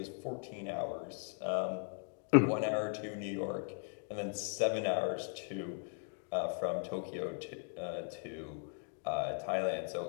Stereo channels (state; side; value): silent; right; 52 dB below the other